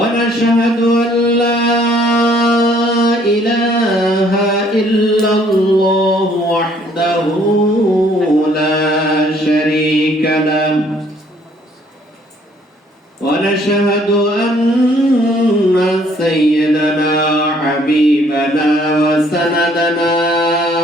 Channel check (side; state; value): both; normal; correlation 0.62